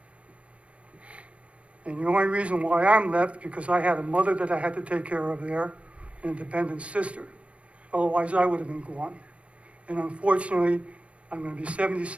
And the only reason why I'm left, because I had a mother that I had to take care of there, and a dependent sister. Otherwise, I would have been gone. And unfortunately, I'm gonna be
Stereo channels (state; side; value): late; left; 0.062 ms